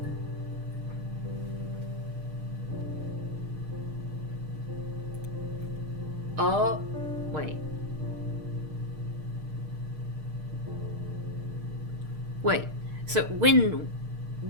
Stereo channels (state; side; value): late; left; 6.5 ms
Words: Oh, wait. Wait. So when